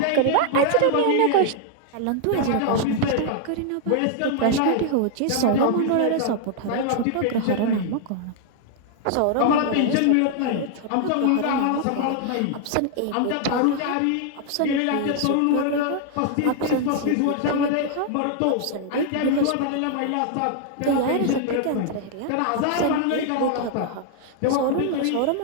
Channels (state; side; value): different; both; correlation 0.00